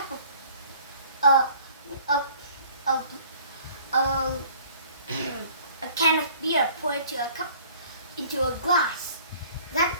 of a can of beer poured into a glass.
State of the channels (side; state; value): both; inverted; correlation -0.53